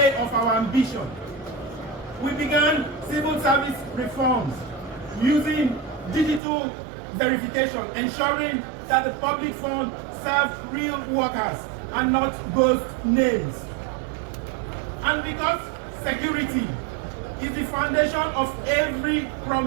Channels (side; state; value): left; drops out; at 6.4 s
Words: of our ambition. We began civil service reforms using digital verification, ensuring that the public fund serves real workers and not ghost names. And because security is the foundation of every